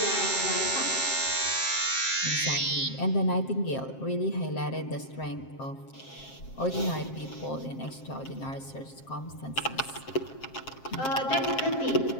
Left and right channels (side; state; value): right; late; 7.5 ms